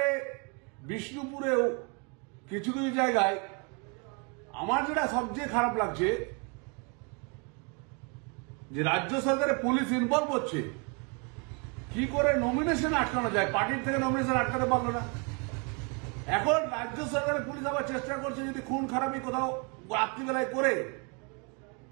বিষ্ণুপুরেও কিছু কিছু জায়গায় আমার যেটা সবচেয়ে খারাপ লাগছে যে রাজ্য সরকারের পুলিশ ইনভলভ হচ্ছে, কি করে নমিনেশন আটকানো যায়, পার্টির থেকে নমিনেশন আটকাতে পারলো না। এখন রাজ্য সরকারের পুলিশ আবার চেষ্টা করছে যদি খুন খারাপি কোথাও রাত্রিবেলায় করে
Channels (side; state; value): left; quieter; 34.3 dB